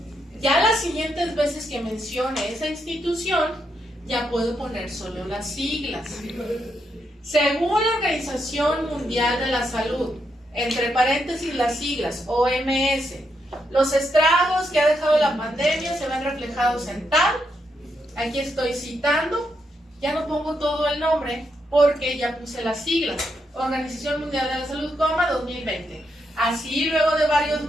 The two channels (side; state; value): both; normal; correlation 0.80